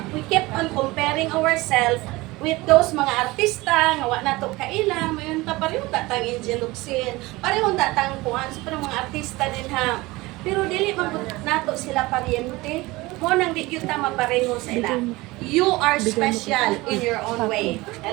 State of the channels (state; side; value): quieter; left; 21.1 dB